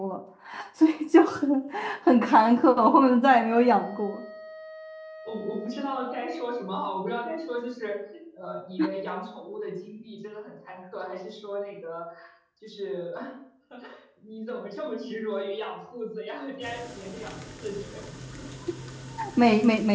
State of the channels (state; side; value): identical; both; correlation 1.00